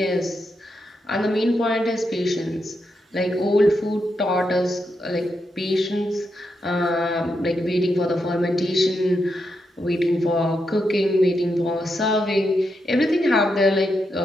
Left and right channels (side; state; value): both; normal; correlation 0.84